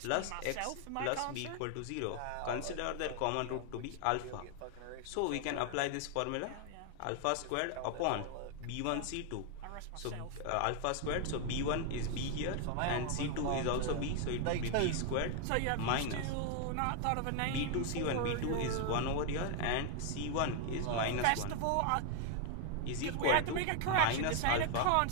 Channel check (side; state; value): both; different; correlation 0.00